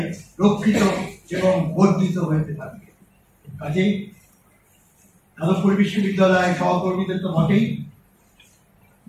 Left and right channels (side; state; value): both; identical; correlation 1.00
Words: রক্ষিত এবং বর্ধিত হইতে থাকবে। কাজেই যাদবপুর বিশ্ববিদ্যালয়ের সহকর্মীদের তো বটেই,